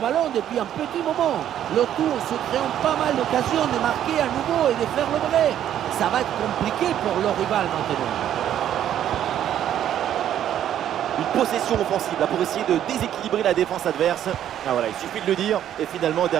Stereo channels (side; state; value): left; quieter; 10.8 dB